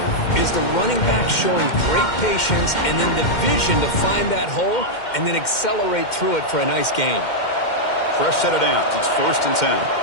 is the running back showing great patience and then the vision to find that hole and then accelerate through it for a nice gain. Fresh set of downs. It's 1st and 10.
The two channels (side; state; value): right; late; 2.1 ms